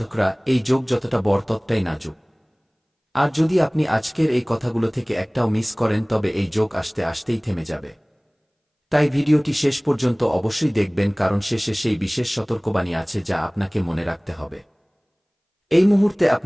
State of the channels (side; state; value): both; identical; correlation 1.00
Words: এই যোগ যতটা বড় ততটাই নাজুক। আর যদি আপনি আজকের এই কথাগুলো থেকে একটাও মিস করেন তবে এই যোগ আসতে আসতেই থেমে যাবে। তাই ভিডিওটি শেষ পর্যন্ত অবশ্যই দেখবেন, কারণ শেষে সেই বিশেষ সতর্কবাণী আছে যা আপনাকে মনে রাখতে হবে। এই মুহূর্তে